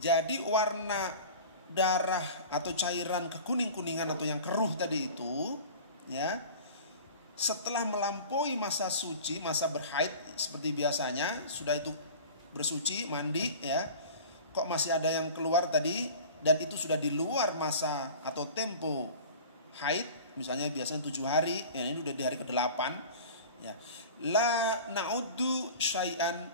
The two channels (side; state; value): both; inverted; correlation -0.39